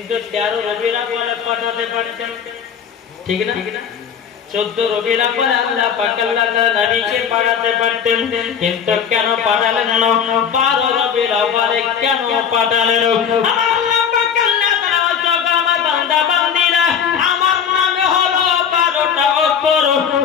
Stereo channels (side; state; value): right; quieter; 7.6 dB